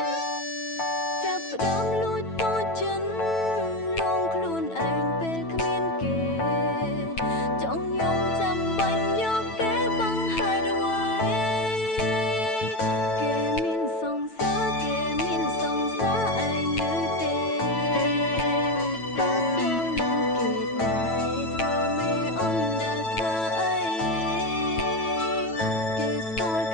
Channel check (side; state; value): right; late; 9.1 ms